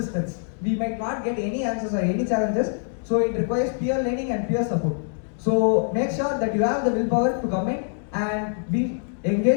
We might not get any answers or any challenges, so it requires peer learning and peer support. So make sure that you have the willpower to come in and be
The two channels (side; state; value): right; silent; digital silence